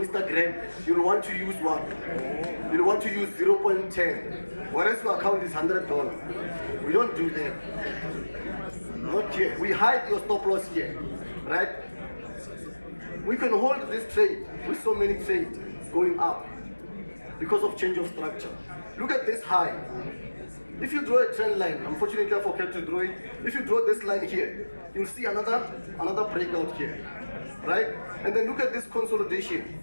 you'll want to use what? You'll want to use 0.10. Whereas your account is $100. We don't do that. Not here. We hide your stop loss here. right? We can hold this trade with so many trades going up because of change of structure. Look at this high. If you draw a trend line, unfortunately I forgot to draw it. If you draw this line here, you'll see another breakout here, right? And then look at this consolidation.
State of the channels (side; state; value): both; inverted; correlation -1.00